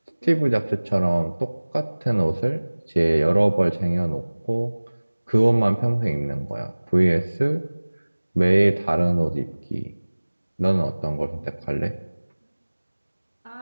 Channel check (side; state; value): both; inverted; correlation -1.00